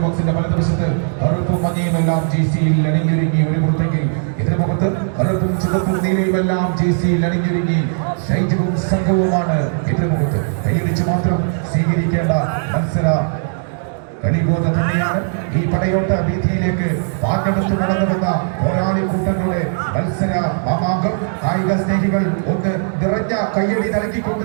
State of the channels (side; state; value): left; silent; digital silence